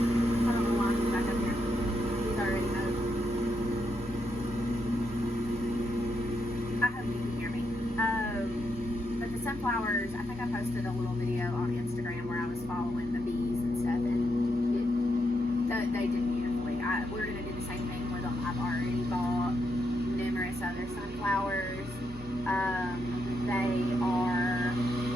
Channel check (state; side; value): normal; both; correlation 0.81